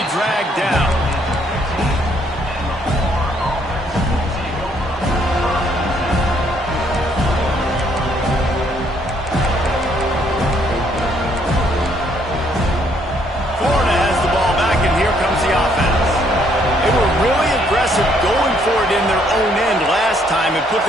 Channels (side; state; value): both; normal; correlation 0.68